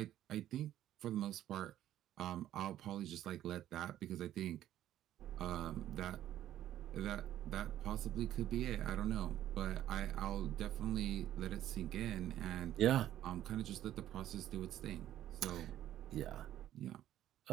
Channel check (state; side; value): quieter; left; 12.4 dB